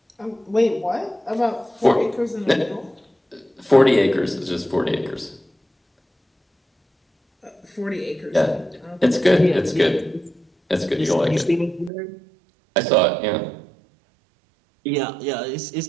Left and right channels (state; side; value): drops out; left; at 11.9 s